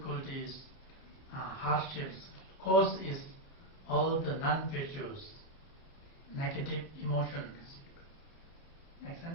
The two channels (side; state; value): right; late; 30 ms